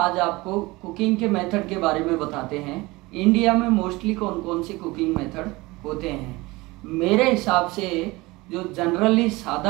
आपको कुकिंग के मेथड के बारे में बताते हैं। इंडिया में मोस्टली कौन कौन से कुकिंग मेथड होते हैं। मेरे हिसाब से जो जनरली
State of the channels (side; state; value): left; quieter; 21.8 dB